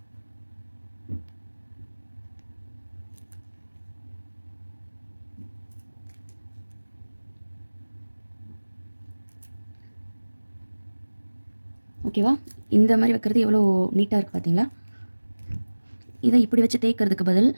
ஓகேவா? இந்த மாதிரி வைக்கிறது எவ்வளோ நீட்டாக இருக்குது பார்த்தீங்களா? இதை இப்படி வச்சு தேய்க்கிறதுக்கு பதில்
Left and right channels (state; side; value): inverted; both; correlation -1.00